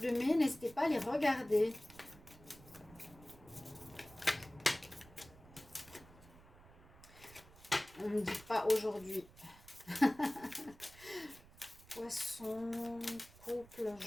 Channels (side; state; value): right; noise; rumble, 22 dB below the sound